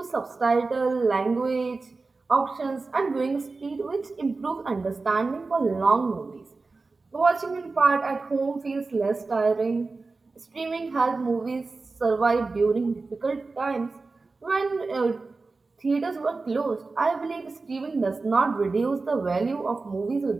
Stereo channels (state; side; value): quieter; left; 3.8 dB